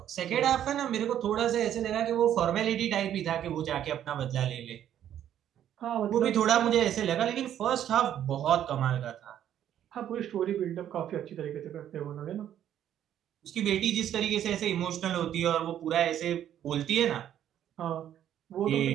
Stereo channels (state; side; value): quieter; left; 10.7 dB